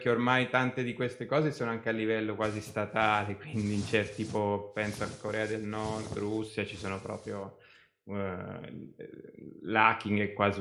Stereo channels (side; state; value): both; identical; correlation 1.00